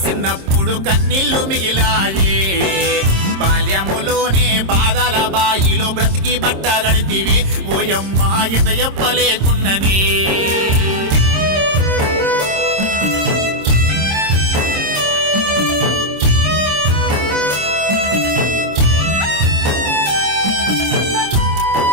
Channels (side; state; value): left; late; 26 ms